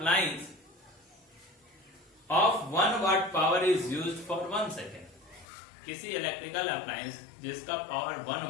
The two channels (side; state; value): right; drops out; at 5.5 s